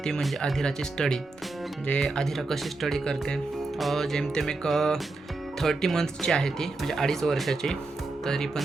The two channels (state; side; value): quieter; left; 3.4 dB